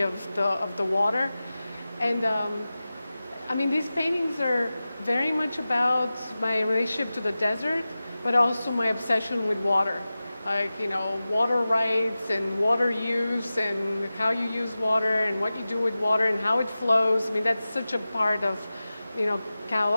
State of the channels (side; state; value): both; inverted; correlation -0.95